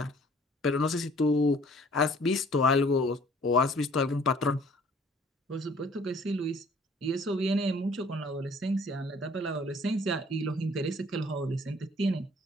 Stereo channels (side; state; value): both; normal; correlation 0.56